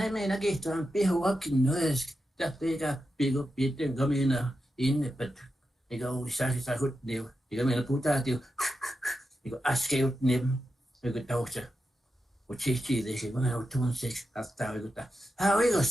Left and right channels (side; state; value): both; normal; correlation 0.89